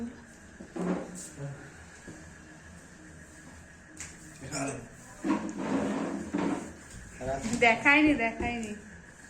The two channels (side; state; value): both; identical; correlation 1.00